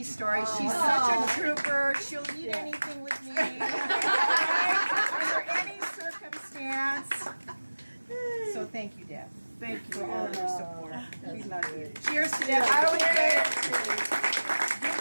story. She's such a trooper. She'll eat anything with me, under any circumstance. So thank you, Deb. Thank you for all of your support. We love you. Cheers to Deb. I always say, give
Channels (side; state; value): both; inverted; correlation -1.00